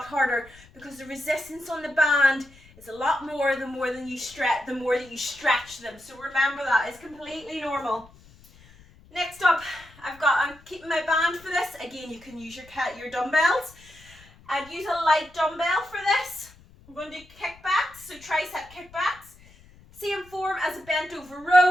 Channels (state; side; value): noise; left; rumble, 25 dB below the sound